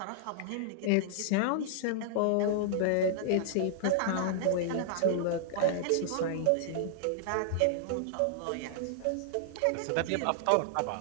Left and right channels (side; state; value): both; different; correlation -0.01